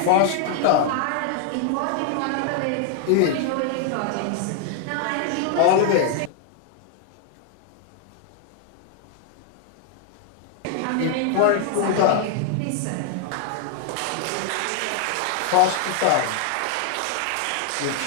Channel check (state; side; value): different; both; correlation 0.00